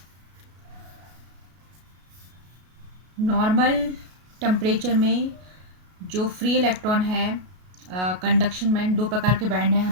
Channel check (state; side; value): late; left; 33 ms